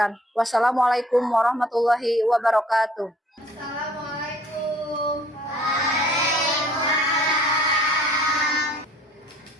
Wassalamualaikum warahmatullahi wabarakatuh. Assalamualaikum.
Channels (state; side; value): normal; both; correlation 0.55